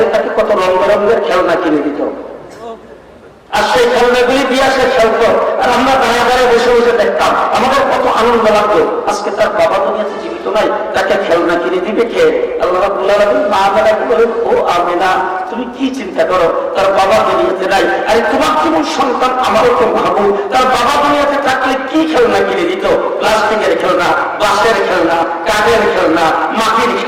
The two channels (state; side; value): identical; both; correlation 1.00